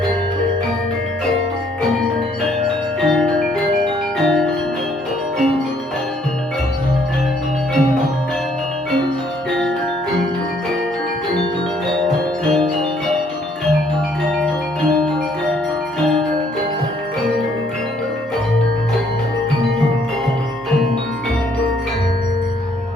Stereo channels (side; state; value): both; normal; correlation 0.66